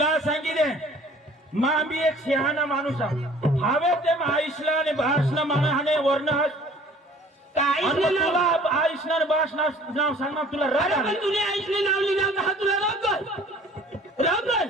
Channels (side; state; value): both; normal; correlation 0.51